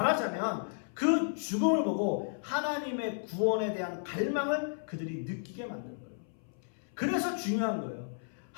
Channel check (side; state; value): right; silent; 56 dB below the other